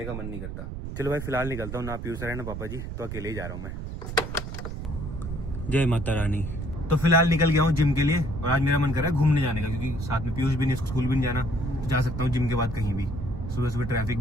का मन नहीं करता। चलो भाई फिलहाल निकलता हूँ, ना पीयूष सर है ना पापा जी, तो अकेले ही जा रहा हूँ मैं। जय माता रानी। तो फिलहाल निकल गया हूँ जिम के लिए और आज मेरा मन कर रहा है घूमने जाने का, क्योंकि साथ में पीयूष भी नहीं, स्कूल भी नहीं जाना, तो जा सकता हूँ जिम के बाद कहीं भी। सुबह सुबह ट्रैफिक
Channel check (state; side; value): noise; right; rumble, 7 dB below the sound